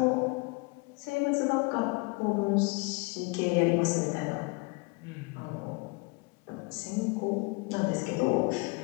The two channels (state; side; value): quieter; right; 28.6 dB